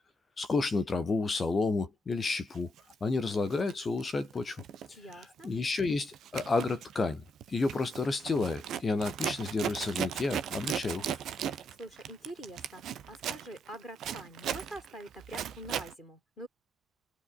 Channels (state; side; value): normal; both; correlation 0.79